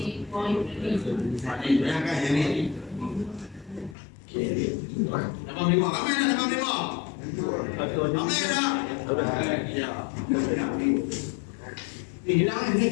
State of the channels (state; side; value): drops out; right; at 4.0 s